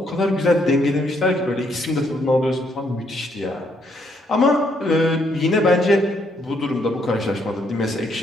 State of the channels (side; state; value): both; normal; correlation 0.72